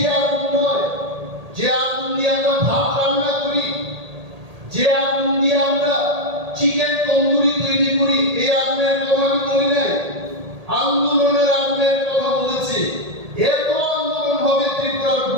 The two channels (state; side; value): late; left; 1.8 ms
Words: আগুন নয় যে আগুন দিয়ে আমরা ভাত রান্না করি যে আগুন দিয়ে আমরা চিকেন তন্দুরি তৈরি করি এই আগুনের কথা আমি বলি নাই আন্দোলনের আগুনের কথা বলেছি এত আন্দোলন হবে ত্রিপুরার